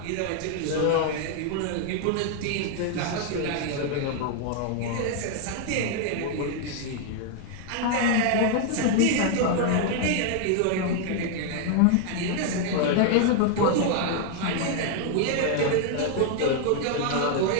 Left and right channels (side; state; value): both; different; correlation 0.00